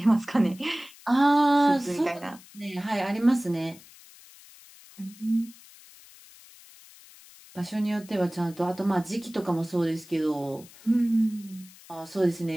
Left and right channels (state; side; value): noise; left; hiss, 22 dB below the sound